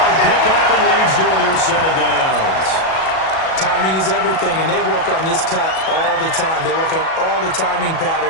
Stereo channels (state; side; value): late; right; 37 ms